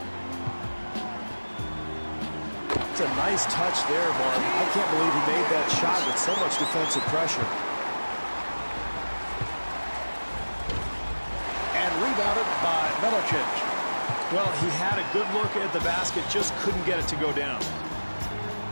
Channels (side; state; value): both; inverted; correlation -1.00